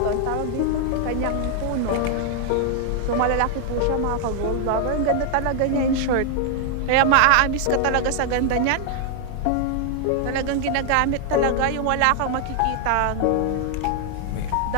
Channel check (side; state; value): both; different; correlation 0.00